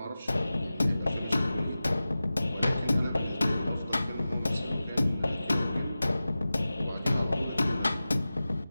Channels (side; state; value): both; inverted; correlation -0.96